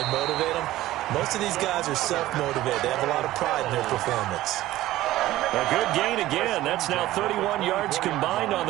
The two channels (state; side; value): quieter; left; 15.6 dB